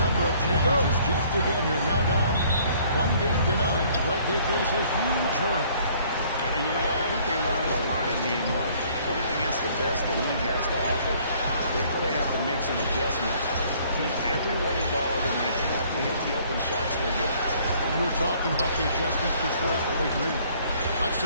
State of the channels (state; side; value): inverted; both; correlation -0.59